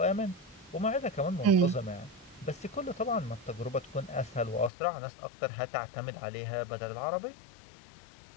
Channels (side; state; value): right; drops out; at 4.7 s